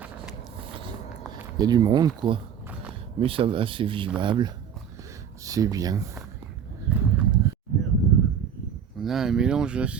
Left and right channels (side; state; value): left; quieter; 8.0 dB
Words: Il y a du monde quoi. Mais ça va, c'est vivable. C'est bien. On a un mélange